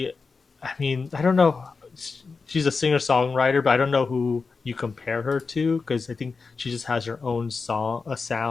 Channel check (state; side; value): quieter; right; 4.6 dB